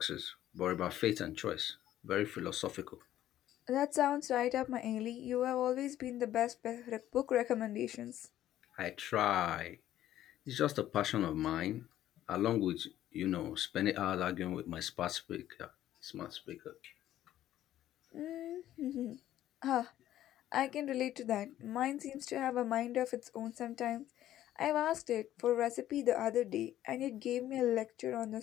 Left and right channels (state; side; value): quieter; right; 12.8 dB